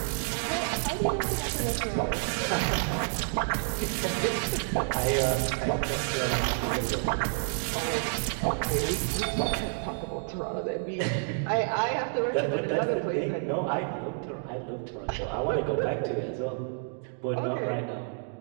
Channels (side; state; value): left; silent; 58 dB below the other